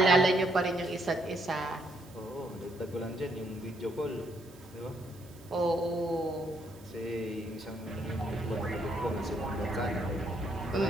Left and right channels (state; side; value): noise; right; hiss, 25 dB below the sound